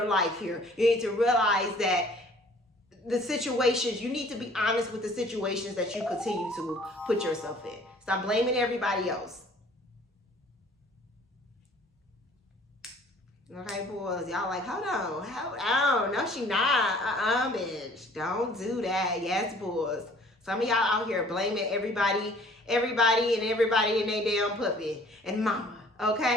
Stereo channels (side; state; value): both; normal; correlation 0.54